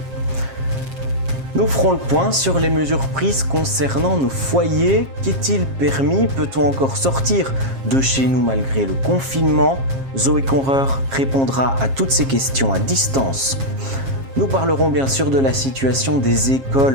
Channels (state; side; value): late; left; 7.4 ms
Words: Nous ferons le point sur les mesures prises concernant nos foyers. Qu'est-il permis? Peut-on encore sortir de chez nous malgré le confinement? Zoé Conreur répondra à toutes ces questions à distance. Nous parlerons bien sûr de la situation des